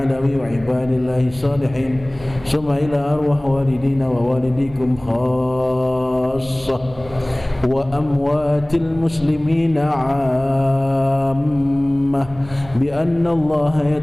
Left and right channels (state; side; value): noise; right; rumble, 19 dB below the sound